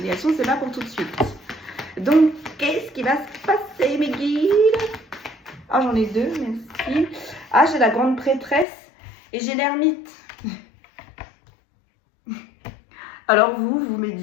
c'est pas pour tout de suite. Donc, qu'est-ce qui va se passer, mes guides? Ah, j'en ai 2, merci. Ah, j'ai la grande prêtresse et j'ai l'ermite. Alors, vous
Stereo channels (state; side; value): drops out; right; at 8.7 s